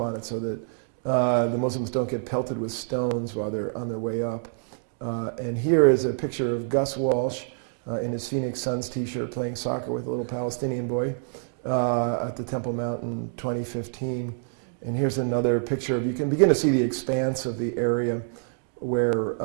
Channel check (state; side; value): silent; left; digital silence